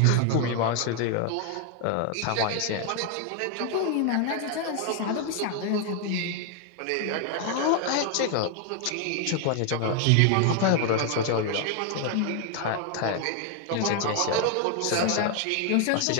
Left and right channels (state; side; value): different; both; correlation 0.00